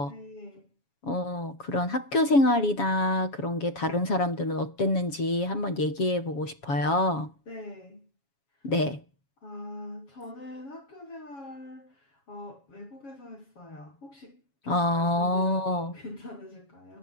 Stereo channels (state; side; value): late; right; 7.2 ms